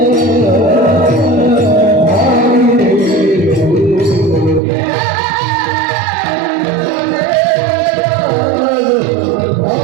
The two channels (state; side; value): drops out; left; at 4.6 s